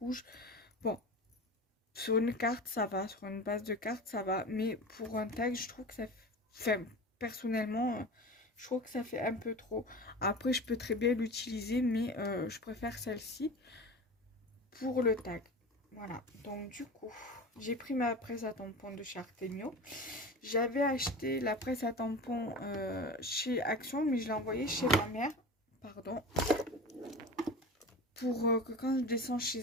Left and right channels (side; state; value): both; normal; correlation 0.31